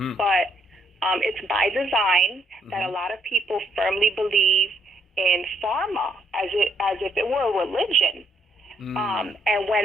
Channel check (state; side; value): normal; both; correlation 0.71